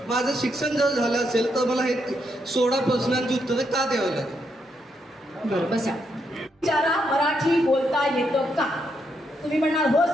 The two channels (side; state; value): both; normal; correlation 0.79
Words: माझं शिक्षण जर झालं असेल तर मला हे 16 प्रश्नांची उत्तरं का द्यावं लागेल? बरं, बसा. विचारा, मराठी बोलता येतं का? तुम्ही म्हणणार हो